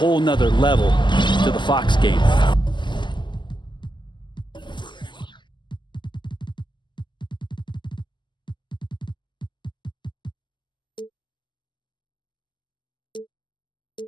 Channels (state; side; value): late; right; 0.22 ms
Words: nother level to the Fox game.